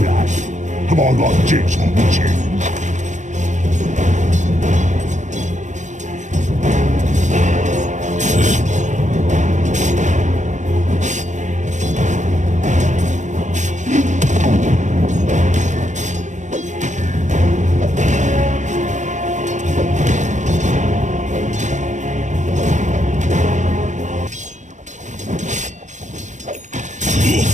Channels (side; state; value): left; late; 0.35 ms